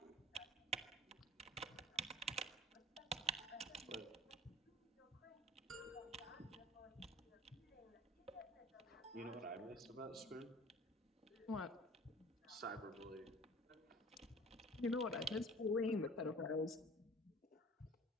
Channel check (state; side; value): normal; both; correlation 0.47